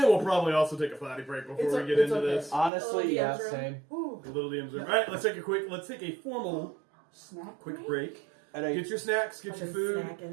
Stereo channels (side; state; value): left; drops out; at 2.7 s